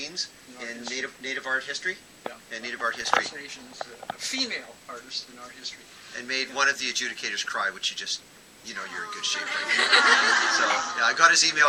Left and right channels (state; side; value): identical; both; correlation 1.00